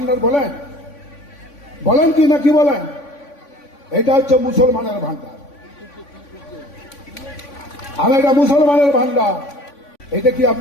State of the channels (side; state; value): right; late; 3.5 ms